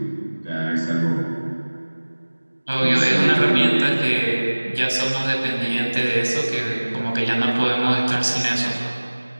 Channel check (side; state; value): both; inverted; correlation -1.00